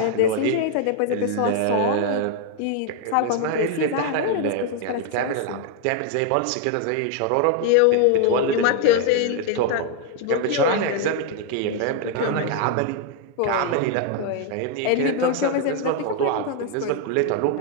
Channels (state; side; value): different; both; correlation 0.00